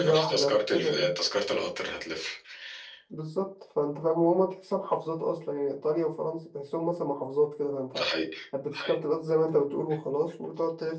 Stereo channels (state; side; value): identical; both; correlation 1.00